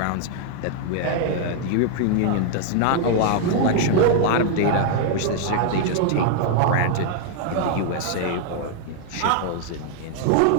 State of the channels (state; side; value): different; both; correlation 0.00